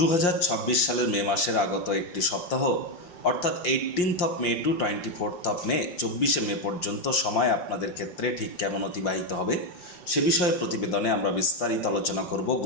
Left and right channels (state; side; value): late; right; 5.7 ms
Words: সালের মে মাসের আগত একটি সপ্তাহ অর্থাৎ 18 মে টু 24 মে 24 মে পর্যন্ত সময় আপনাদের ক্ষেত্রে ঠিক কেমন অতিবাহিত হবে সে বিষয়ে প্রতিবেদনে আমরা বিস্তারিত আলোচনা করব।